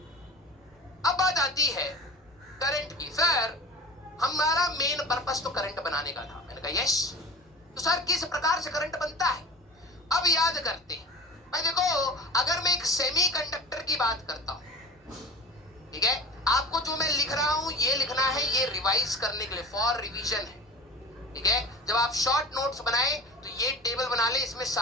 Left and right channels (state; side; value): normal; both; correlation 0.37